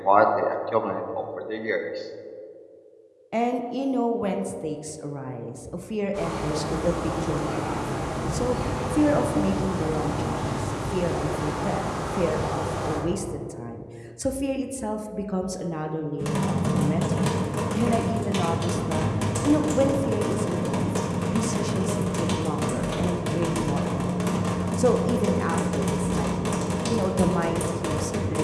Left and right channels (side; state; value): both; identical; correlation 1.00